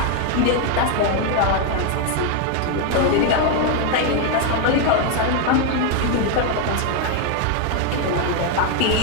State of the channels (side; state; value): both; different; correlation 0.01